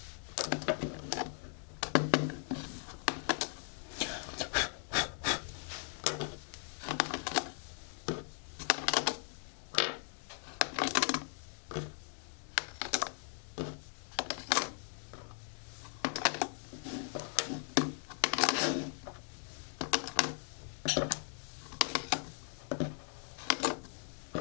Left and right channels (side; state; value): right; silent; 52 dB below the other